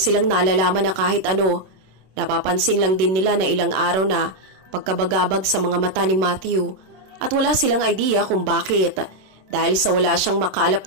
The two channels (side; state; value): left; late; 26 ms